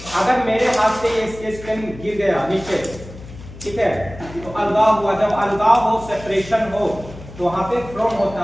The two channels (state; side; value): noise; left; hum, 16 dB below the sound